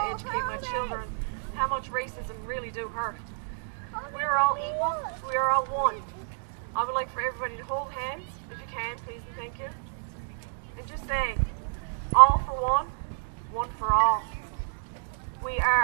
to educate my children how much racism really do hurt. We are all equal. We are all one. I would like for everybody to hold hands, if you can, please and thank you. And just say, all for one, one for all. We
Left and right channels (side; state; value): left; silent; digital silence